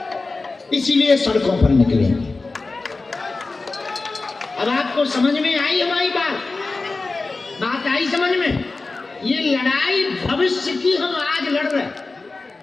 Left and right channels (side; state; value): right; quieter; 3.6 dB